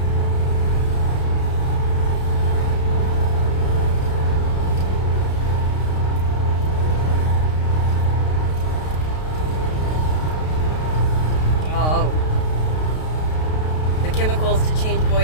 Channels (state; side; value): late; right; 32 ms